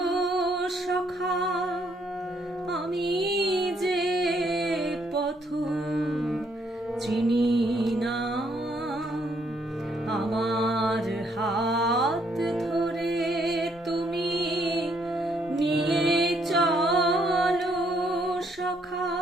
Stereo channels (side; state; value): both; normal; correlation 0.71